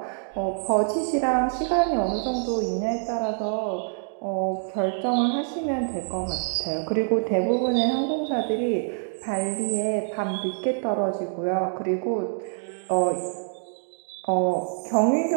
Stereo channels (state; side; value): silent; left; digital silence